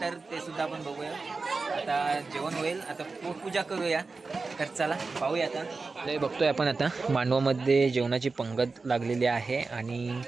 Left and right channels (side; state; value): left; quieter; 4.0 dB